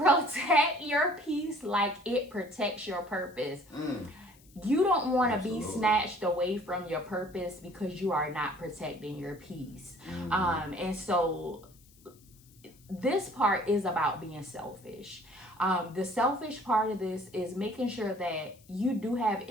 your peace like it protects your purpose. You don't want to be snatched away from your purpose because you are not protecting your peace. And so this part is about being selfish. The selfish part of this is making sure that you do have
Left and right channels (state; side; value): noise; left; hiss, 27 dB below the sound